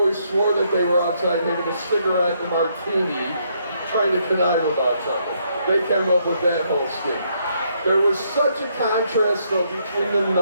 swore that they were outside having a cigarette and a martini, trying to connive about something. They came up with that whole scheme. There was such a contrast, though, between the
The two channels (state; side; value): inverted; both; correlation -0.73